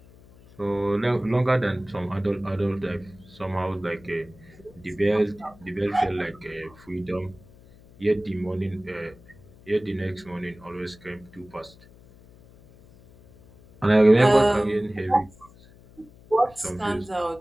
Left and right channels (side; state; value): left; noise; hum, 24 dB below the sound